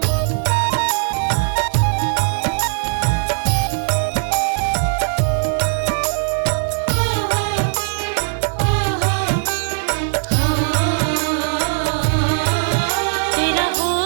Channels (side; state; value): left; silent; 59 dB below the other